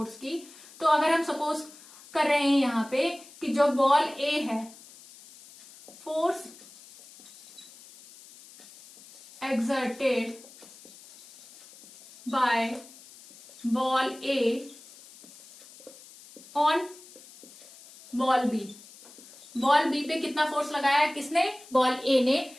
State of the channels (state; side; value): noise; left; hiss, 21 dB below the sound